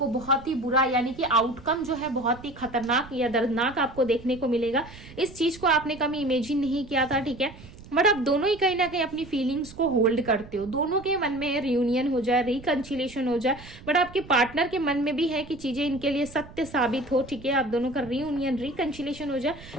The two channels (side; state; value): right; noise; rumble, 18 dB below the sound